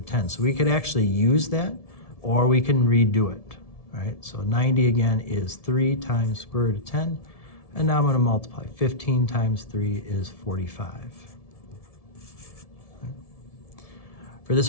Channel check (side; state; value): right; late; 1.7 ms